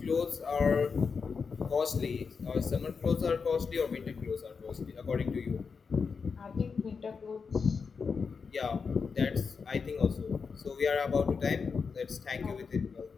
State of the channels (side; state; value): right; quieter; 5.4 dB